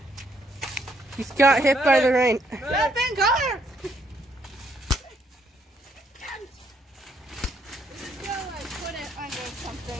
He's got hit by the rain. Jump in, Connor! Put it under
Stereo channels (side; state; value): both; normal; correlation 0.71